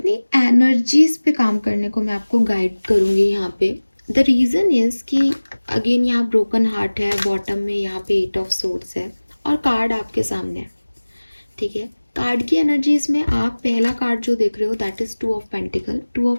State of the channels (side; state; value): both; inverted; correlation -1.00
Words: एनर्जीज पे काम करने को मैं आपको गाइड करूँगी यहाँ पे। द रीज़न इज़ कि अगेन यहाँ ब्रोकन हार्ट है, बॉटम में यहाँ पे 8 ऑफ सोर्ड्स है और कार्ड आपके सामने है। ठीक है, कार्ड की एनर्जीज में आप पहला कार्ड जो देख रहे हो that is 2 of pentacle. 2 of